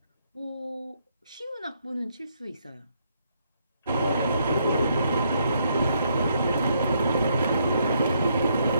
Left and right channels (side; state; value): both; inverted; correlation -0.73